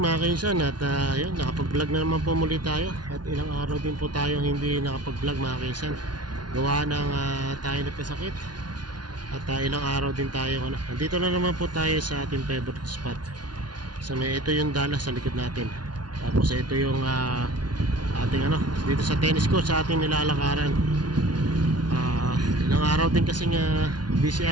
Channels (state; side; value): late; left; 0.70 ms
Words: kainsan. At yun, nakapag-vlog na naman po muli tayo. At ilang araw din po tayo hindi nakapag-vlog mga kainsan. Gawa ng tayo nagkasakit. At ilang araw din tayo nandito na naman po tayo sa ating favorite spot. Ito yung Dallas sa likod natin. Tapos ito yung ating dito sa tennis court sa ating nilalakaran. Ilang araw din kasi busy